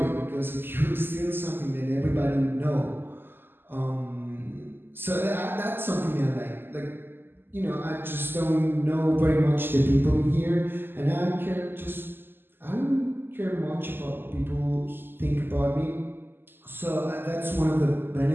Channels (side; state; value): left; late; 0.099 ms